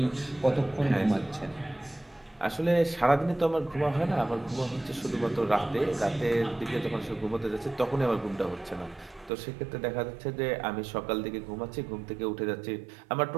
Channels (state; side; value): drops out; left; at 9.3 s